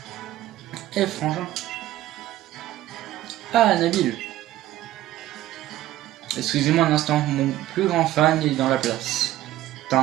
Eh frangin. Ah Nabil. Excusez-moi un instant, mon plus grand fan est dans la place. T'as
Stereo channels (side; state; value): left; quieter; 14.5 dB